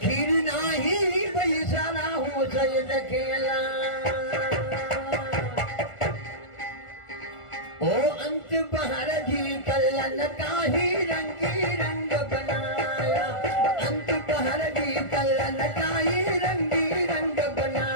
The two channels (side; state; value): right; late; 1.4 ms